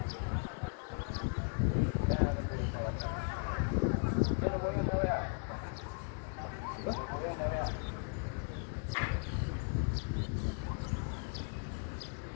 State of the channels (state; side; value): quieter; right; 38.7 dB